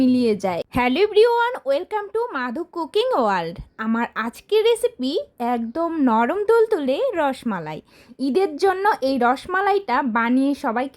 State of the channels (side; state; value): both; identical; correlation 1.00